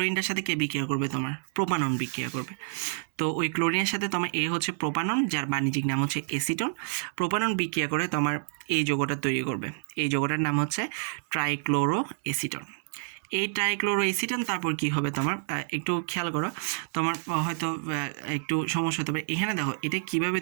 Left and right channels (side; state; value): left; silent; digital silence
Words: সাথে কে বিক্রিয়া করবে, তোমার প্রোপানন বিক্রিয়া করবে। তো ওই ক্লোরিনের সাথে তোমার এ হচ্ছে প্রোপানন, যার বাণিজ্যিক নাম হচ্ছে এসিটন। প্রোপানন বিক্রিয়া করে তোমার এই যৌগটা তৈরি করবে, এই যৌগটার নাম হচ্ছে ট্রাইক্লোরো এসিটন। এই ট্রাইক্লোরো এসিটন তারপর কি হবে তোমার, একটু খেয়াল করো, তোমার হয়তো একটু সমস্যা হতে পারে। এখানে দেখো এটা কিভাবে